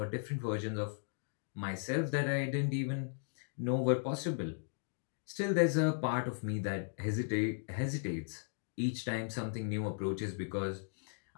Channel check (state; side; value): silent; right; digital silence